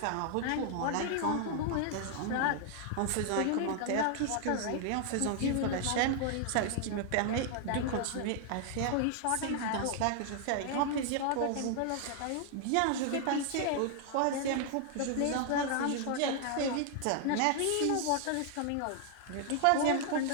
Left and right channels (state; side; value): different; both; correlation 0.00